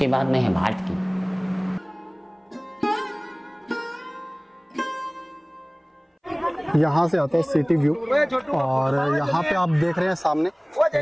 बाद में है भाट की। यहाँ से आता है सिटी व्यू, और यहाँ पे आप देख रहे हैं सामने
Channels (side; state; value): both; identical; correlation 1.00